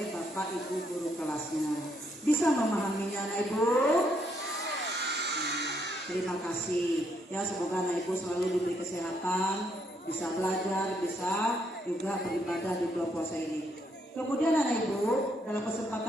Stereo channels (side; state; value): both; normal; correlation 0.74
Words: Bapak Ibu guru kelasnya. Bisa memahaminya anak ibu? Terima kasih. Ya, semoga anak ibu selalu diberi kesehatan, bisa belajar, bisa juga beribadah di bulan puasa ini. Kemudian anak ibu, dalam